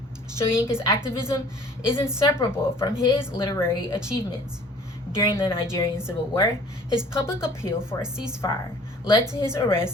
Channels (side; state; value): both; normal; correlation 0.51